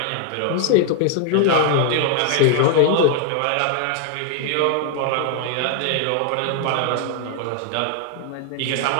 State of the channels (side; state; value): both; different; correlation 0.00